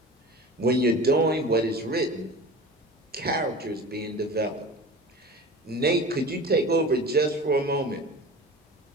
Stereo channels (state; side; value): normal; both; correlation 0.36